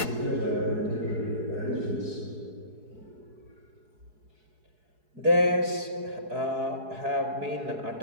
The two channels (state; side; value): late; left; 4.7 ms